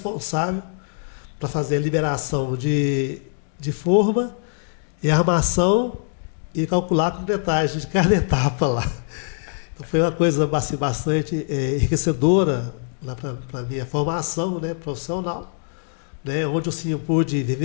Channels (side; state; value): right; silent; digital silence